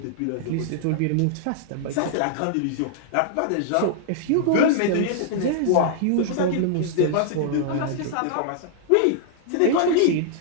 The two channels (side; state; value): both; different; correlation -0.01